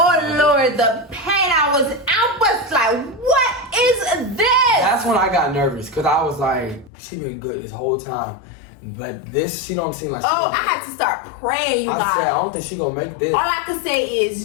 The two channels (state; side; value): drops out; right; at 6.9 s